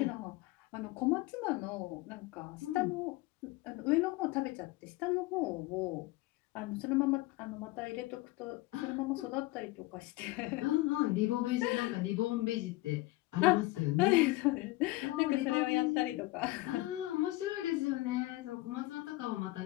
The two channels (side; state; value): right; quieter; 19.4 dB